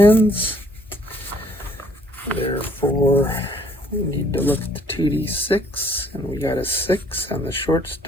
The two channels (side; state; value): both; normal; correlation 0.62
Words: Therefore, we need to look at the 2D6, and we got a 6 on the